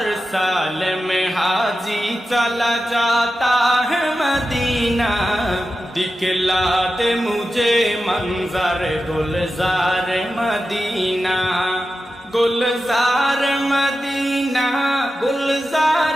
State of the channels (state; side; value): normal; both; correlation 0.92